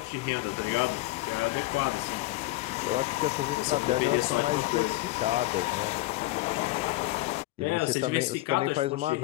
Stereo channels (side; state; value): right; quieter; 18.8 dB